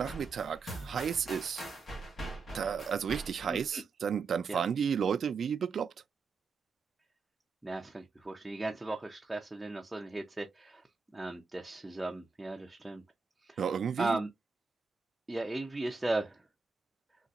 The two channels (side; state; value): left; quieter; 4.9 dB